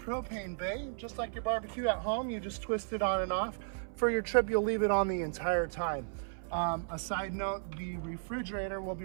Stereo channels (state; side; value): silent; left; 55 dB below the other